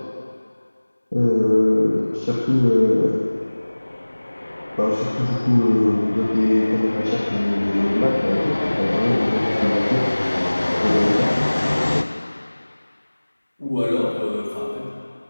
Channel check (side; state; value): both; inverted; correlation -1.00